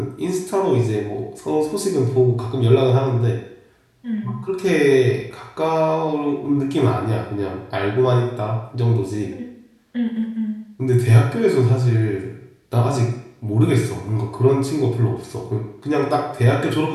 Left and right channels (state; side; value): identical; both; correlation 1.00